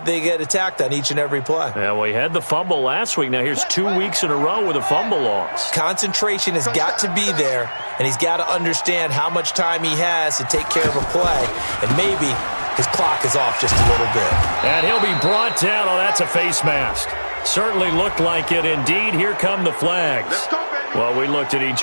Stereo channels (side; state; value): both; inverted; correlation -1.00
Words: they get attacked on each and every play. Yeah, well, he had the fumble last week. Now here's 2 weeks in a row with a fumble loss. Concentration has got to be there, and he's got to understand how much time he has to take care of a play, and maybe his clock is off just a little bit. And he'll be brought down. Oh, that's a face mask. Certainly looked like it. Indeed, here come the flags. Well, we looked at